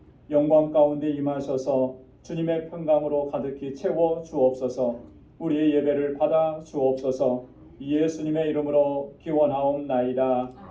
영광 가운데 임하셔서 주님의 평강으로 가득히 채워 주옵소서. 우리의 예배를 받아 주옵소서. 예수님의 이름으로 기원하옵나이다.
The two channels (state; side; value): identical; both; correlation 1.00